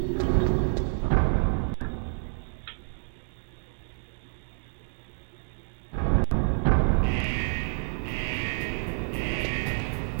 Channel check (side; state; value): left; silent; digital silence